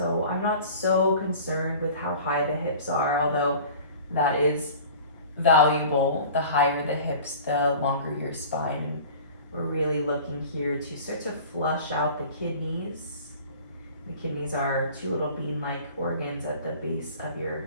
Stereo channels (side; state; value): both; inverted; correlation -0.42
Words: I'm not so concerned with how high the hips are, although that is valuable. The higher the hips, the longer your spine. And we're really looking here to start to flush out the kidneys. The kidneys are 2 little bean-like organs at the base of